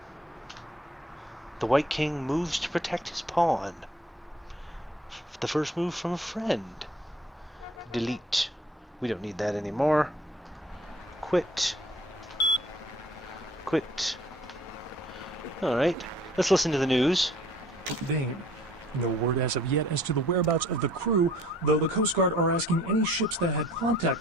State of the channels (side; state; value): both; normal; correlation 0.54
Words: The White King moves to protect his pawn. The first move from a friend. Delete. We don't need that anymore. Quit. Quit. Alright, let's listen to the news. Dane. No word as of yet as to the whereabouts of the crew, though the Coast Guard are asking any ships that had